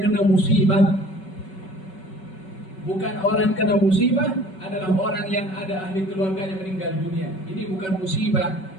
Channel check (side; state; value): right; late; 5.3 ms